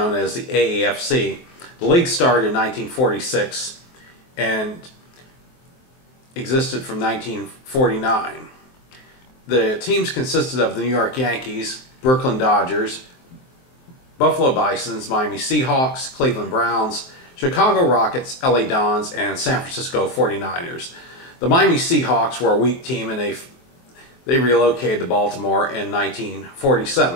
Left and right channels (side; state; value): right; late; 23 ms